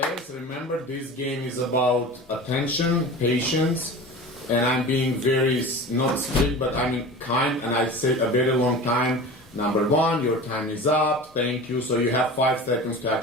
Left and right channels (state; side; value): normal; both; correlation 0.35